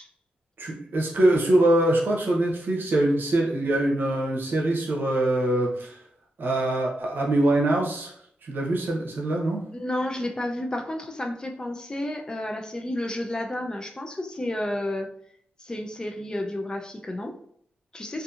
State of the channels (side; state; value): both; normal; correlation 0.85